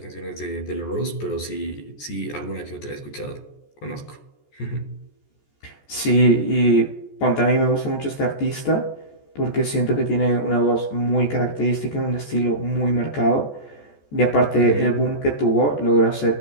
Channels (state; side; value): late; right; 14 ms